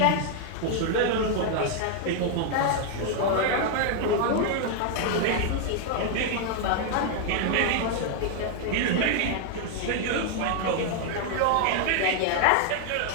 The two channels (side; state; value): both; different; correlation 0.00